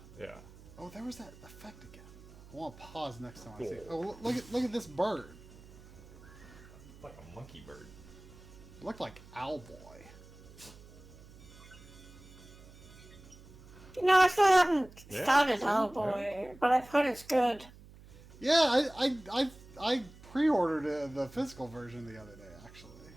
Yeah. Oh, there was that effect again. I want to pause next time I see it. Oh, look at this bird. It's like a monkey bird. It looked like Owlboy. You know, I still haven't Yeah, started see? Hellboy, but I've heard it's good. Yeah, I pre-ordered the physical version the other day, actually.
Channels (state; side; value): noise; right; hum, 20 dB below the sound